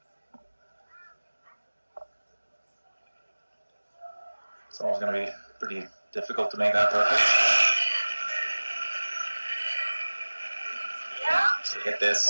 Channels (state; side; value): inverted; both; correlation -1.00